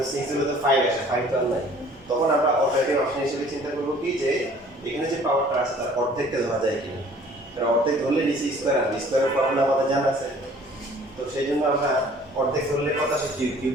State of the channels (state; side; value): normal; both; correlation 0.53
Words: 6 হলে তো 5 আসে, 5 তো আর নাই। তখন আমরা অল্টারনেটিভ অপশন হিসেবে চিন্তা করবো কি, যে এখানে যে পাওয়ারটা আছে তার অর্ধেকটা ধরা যায় কিনা। কারণ অর্ধেক ধরলে নিচে স্কয়ার আসবে, স্কয়ারের ফর্মুলা আমাদের জানা আছে। তো সেই জন্য আমরা অর্ধেক ধরলে কত আসে? কিউব।